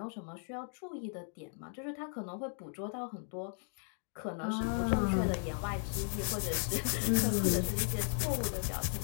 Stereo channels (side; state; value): right; silent; 54 dB below the other